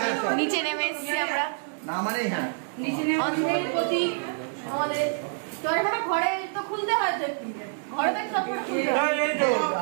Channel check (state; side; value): silent; left; digital silence